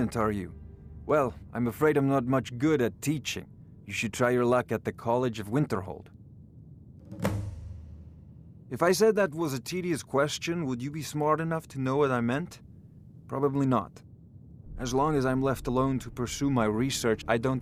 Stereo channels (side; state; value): both; identical; correlation 1.00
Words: are you? Well, I'm afraid I'm not much good at teaching. You should try your luck at the College of Winterhold. If I said that was a tedious question, would you be smart enough to know what I meant? Probably not. As long as I'm left alone to pursue my research, I